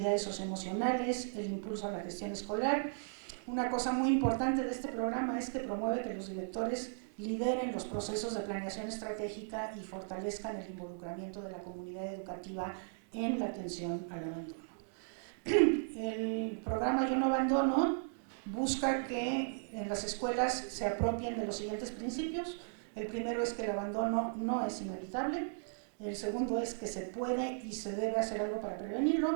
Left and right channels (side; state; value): left; silent; digital silence